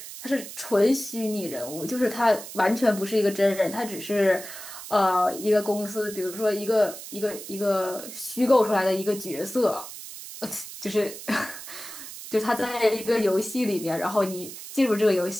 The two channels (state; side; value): noise; right; hiss, 12 dB below the sound